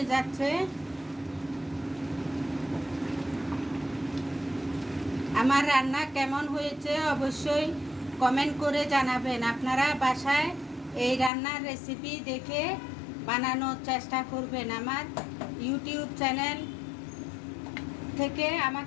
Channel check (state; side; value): drops out; right; at 11.3 s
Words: যাচ্ছে। আমার রান্না কেমন হয়েছে অবশ্যই কমেন্ট করে জানাবেন। আপনারা বাসায় এই রান্নার রেসিপি দেখে বানানোর চেষ্টা করবেন। আমার ইউটিউব চ্যানেল থেকে